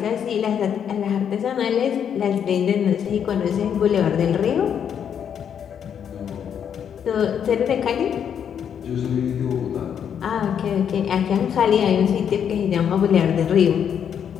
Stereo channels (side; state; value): right; quieter; 8.3 dB